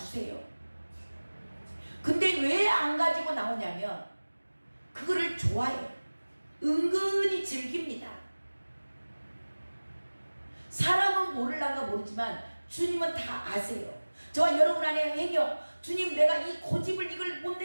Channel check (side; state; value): both; inverted; correlation -1.00